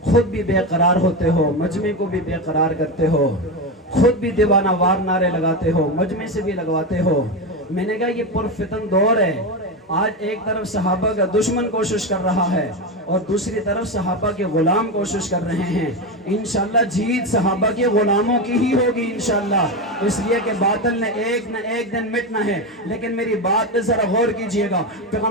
خود بھی بے قرار ہوتے ہو، مجمع کو بھی بے قرار کرتے ہو، خود بھی دیوانہ وار نعرے لگاتے ہو، مجمع سے بھی لگواتے ہو۔ میں نے کہا یہ پرفتن دور ہے۔ آج ایک طرف صحابہ کا دشمن کوشش کر رہا ہے اور دوسری طرف صحابہ کے غلام کوشش کر رہے ہیں۔ انشاءاللہ جیت صحابہ کے غلاموں کی ہی ہوگی انشاءاللہ، اس لیے کہ باطل نے ایک نہ ایک دن مٹنا ہے۔ لیکن میری بات پہ ذرا غور کیجئے گا،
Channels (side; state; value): both; normal; correlation 0.15